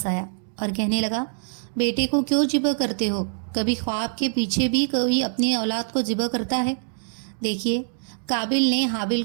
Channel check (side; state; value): left; silent; digital silence